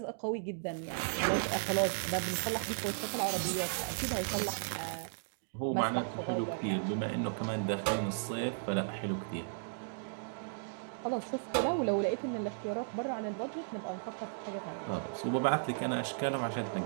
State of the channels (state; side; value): silent; left; digital silence